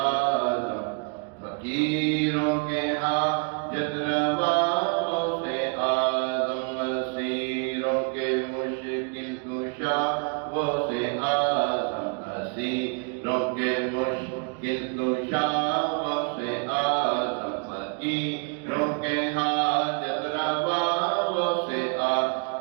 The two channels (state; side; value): quieter; left; 36.9 dB